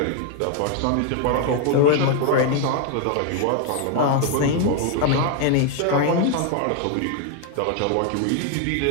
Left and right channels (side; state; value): both; different; correlation 0.01